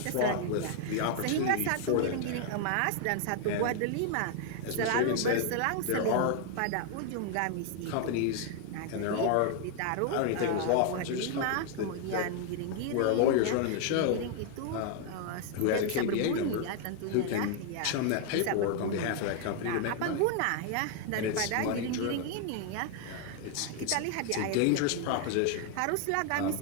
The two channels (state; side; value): different; both; correlation 0.00